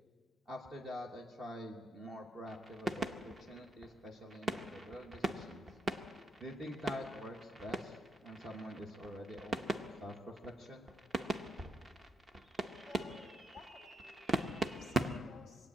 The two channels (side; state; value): both; normal; correlation 0.80